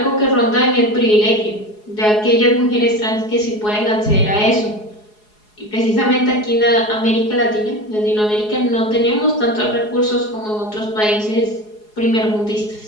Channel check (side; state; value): right; late; 4.8 ms